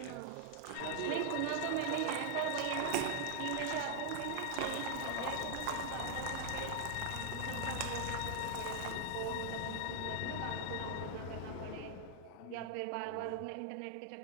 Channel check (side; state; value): both; different; correlation 0.00